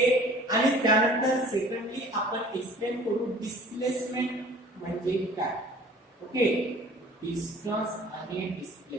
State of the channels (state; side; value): normal; both; correlation 0.49